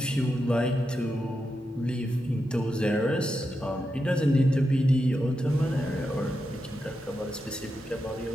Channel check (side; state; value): both; normal; correlation 0.87